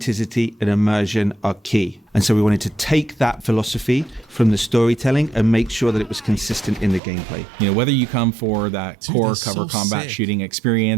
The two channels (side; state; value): left; drops out; at 7.0 s